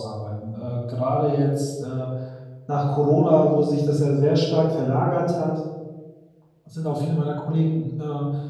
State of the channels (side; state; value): both; identical; correlation 1.00